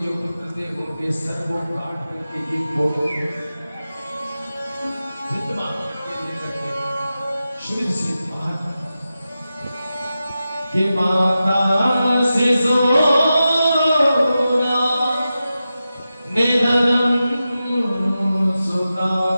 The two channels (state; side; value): inverted; both; correlation -0.92